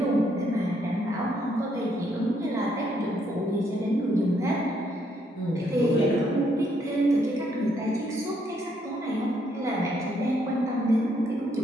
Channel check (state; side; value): normal; both; correlation 0.72